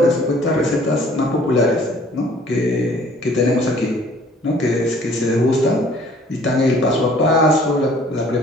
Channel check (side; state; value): both; normal; correlation 0.55